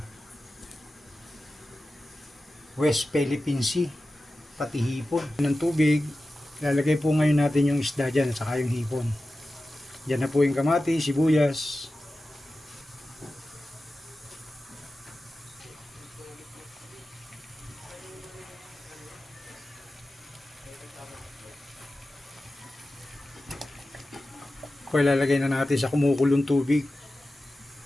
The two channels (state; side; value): normal; both; correlation 0.94